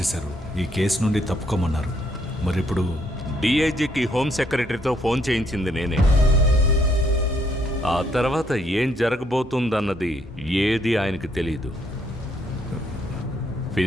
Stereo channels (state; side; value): normal; both; correlation 0.71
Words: ఈ కేసు నుండి తప్పుకోమన్నారు. మరి ఇప్పుడు డిఐజీకి హోమ్ సెక్రటరీతో ఫోన్ చేయించింది నేనే. ఆ తర్వాత ఏం జరగబోతుందన్నది ఏది ఆయనకి తెలీదు.